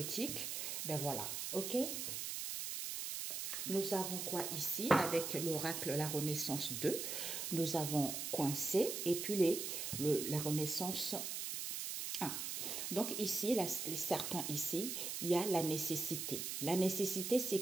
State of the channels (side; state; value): right; noise; hiss, 3 dB below the sound